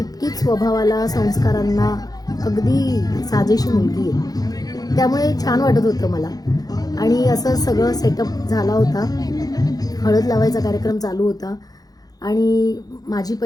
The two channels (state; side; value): late; right; 0.18 ms